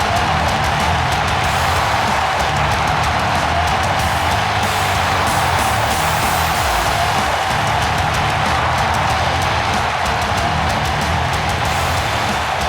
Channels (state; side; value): identical; both; correlation 1.00